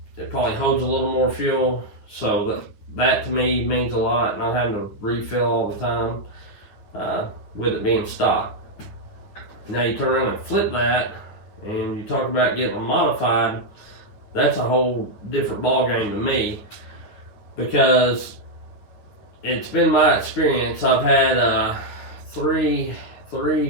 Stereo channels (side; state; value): right; late; 9.7 ms